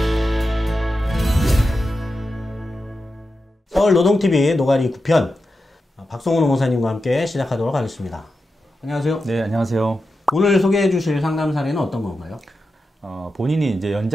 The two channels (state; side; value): normal; both; correlation 0.90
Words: 서울노동TV 노가리 9편 박성훈 노무사님과 함께 시작하도록 하겠습니다. 안녕하세요. 네, 안녕하세요. 오늘 소개해 주실 상담 사례는 어떤 건가요? 본인이 이제